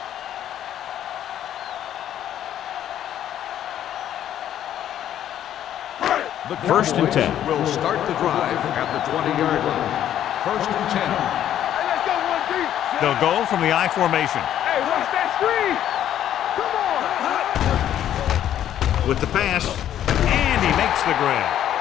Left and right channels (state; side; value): quieter; right; 11.0 dB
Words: The First and 10. Will start the drive at the 20-yard line. First and 10. They'll go from the I formation. Hey, watch that screen. Come on. With the pass, and he makes the grab.